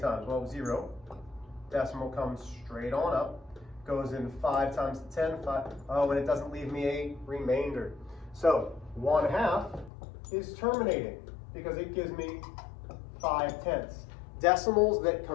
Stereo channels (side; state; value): right; drops out; at 9.9 s